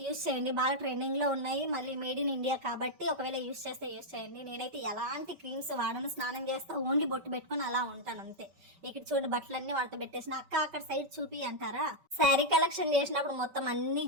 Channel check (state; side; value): late; left; 5.2 ms